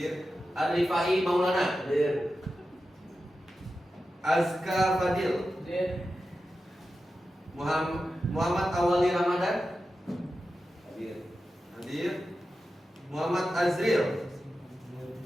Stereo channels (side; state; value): both; normal; correlation 0.92